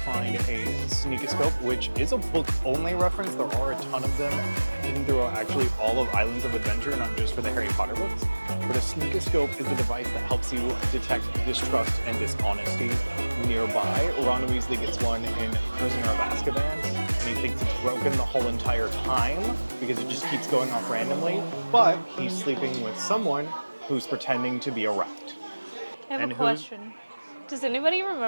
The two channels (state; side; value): inverted; both; correlation -1.00